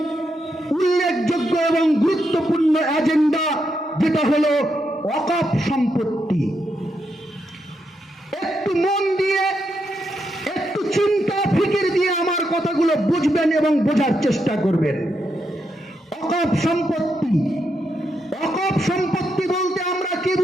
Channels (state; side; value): normal; both; correlation 0.82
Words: এবং গুরুত্বপূর্ণ এজেন্ডা যেটা হলো ওয়াকফ সম্পত্তি। একটু মন দিয়ে, একটু চিন্তা ফিকির দিয়ে আমার কথাগুলো বুঝবেন এবং বোঝার চেষ্টা করবেন। ওয়াকফ সম্পত্তি বলতে আমরা কি